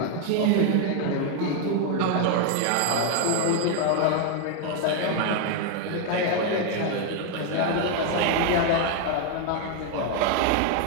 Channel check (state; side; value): different; both; correlation 0.01